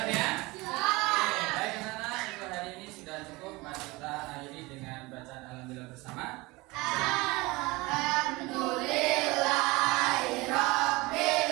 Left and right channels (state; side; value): quieter; left; 22.8 dB